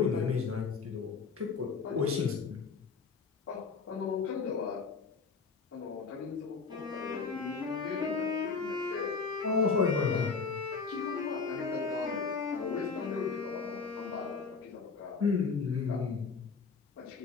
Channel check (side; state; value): right; quieter; 4.9 dB